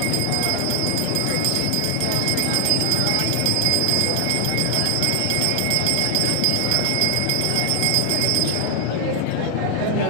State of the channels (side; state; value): both; different; correlation 0.00